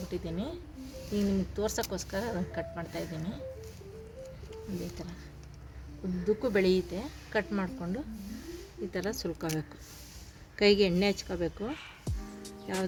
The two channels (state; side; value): identical; both; correlation 1.00